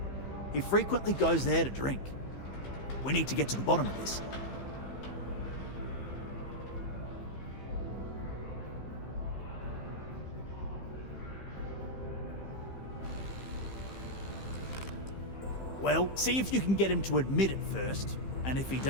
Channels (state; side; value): late; right; 15 ms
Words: He frequently goes there to drink. We need to get to the bottom of this. Well, see if you can get him to admit it first, and if he